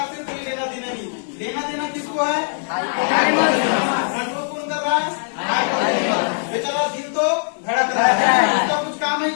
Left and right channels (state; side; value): silent; right; digital silence